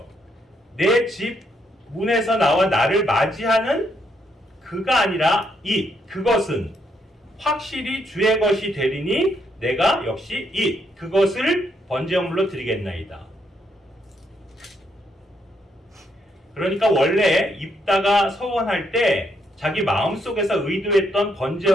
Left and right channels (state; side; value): normal; both; correlation 0.75